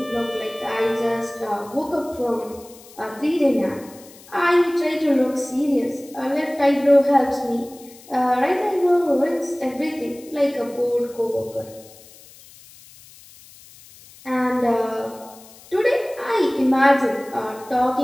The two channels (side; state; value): left; noise; hiss, 22 dB below the sound